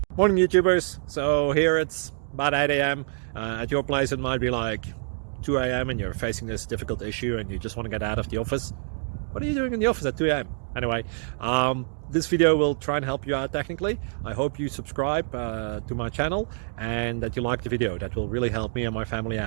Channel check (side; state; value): left; silent; digital silence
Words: Morning YouTubers. So here it's about 8 a.m. At your place it might be like 2 a.m. and you're facing this difficult issue and you just want to get out of the office. What are you doing in the office at 2 a.m.? Anyway, this video will try and help you out technically. I hope you subscribe to my channel and that you like the video. That will really help me and my family